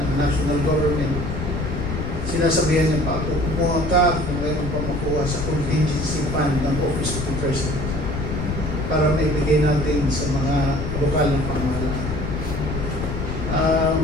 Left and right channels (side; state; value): left; noise; rumble, 4 dB below the sound